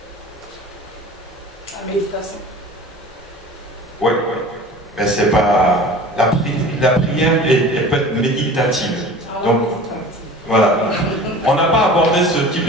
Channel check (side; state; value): both; normal; correlation 0.40